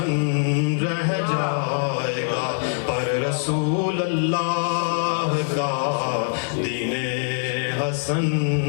رہ جائے گا، پر رسول اللہ کا دین حسن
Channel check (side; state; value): right; silent; digital silence